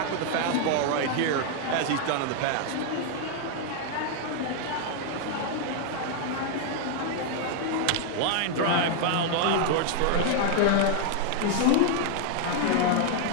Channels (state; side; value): different; both; correlation 0.00